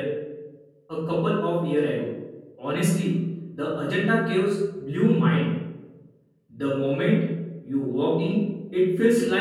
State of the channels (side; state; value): both; identical; correlation 1.00